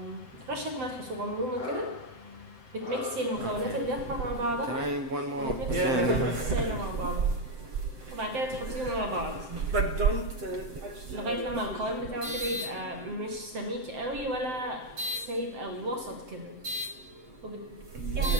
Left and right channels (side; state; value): left; late; 7.8 ms